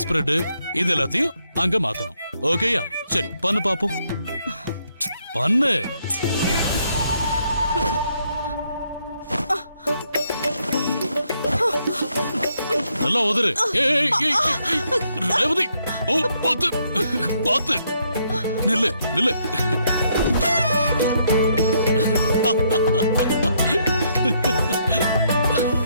ஸ்ப்ரெட் இது எல்லாத்தையும் அங்க மாத்தணும். ஓகேயா? சரி பண்ணு பாப்போம். பண்ணு. நல்லா உதறு. ரேவதி, ஓ பாத்து பாத்து. நில்லு நில்லு.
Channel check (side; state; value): both; inverted; correlation -0.73